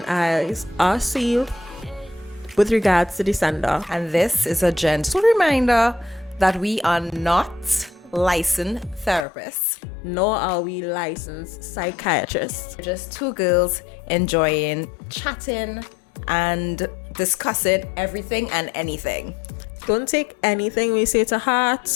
eyes are sealed with regards to the sender. And this is a gentle reminder that we are not licensed therapists, Nor are we licensed psychiatrists. we're just two girls enjoying chatting and discussing everything and anything. Don't take anything we say to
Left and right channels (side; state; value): right; drops out; at 9.2 s